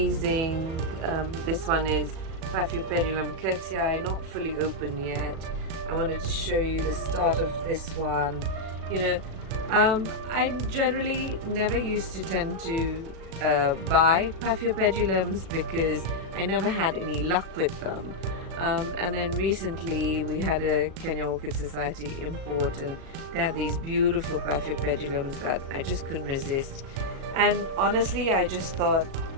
This one is Paphiopedilum curtii, not fully open yet. I wanted to show you the start of this one. I generally never used to tend to buy Paphiopedilums because I never had any luck with them. And then recently we had a Kenya Orchid Society import, and they had these beautiful Paphiopedilums that I just couldn't resist. And honestly, I just thought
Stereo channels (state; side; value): late; left; 36 ms